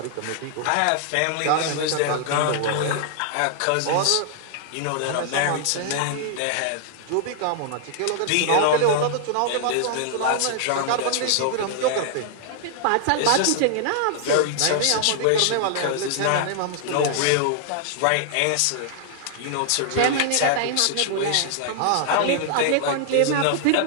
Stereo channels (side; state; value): both; different; correlation -0.01